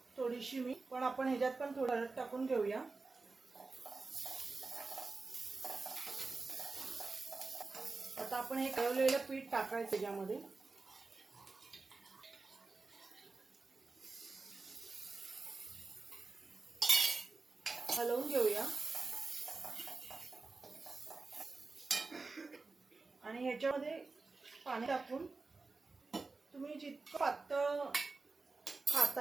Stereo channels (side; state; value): left; quieter; 3.8 dB